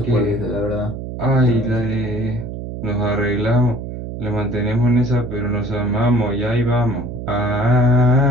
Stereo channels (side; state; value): right; noise; hum, 8 dB below the sound